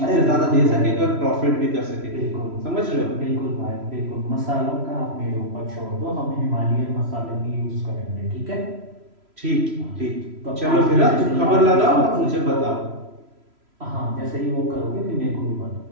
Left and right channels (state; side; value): late; left; 3.0 ms